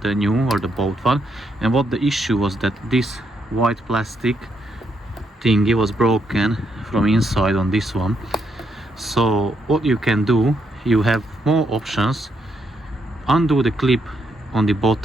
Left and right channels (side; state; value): both; normal; correlation 0.77